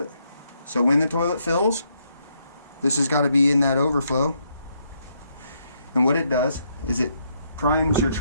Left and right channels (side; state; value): both; inverted; correlation -0.76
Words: it. So when the toilet fills, this has got to be in that overflow. And what it does is it primes your